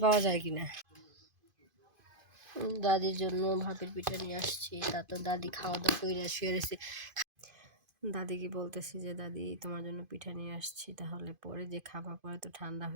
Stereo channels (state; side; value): late; left; 2.5 ms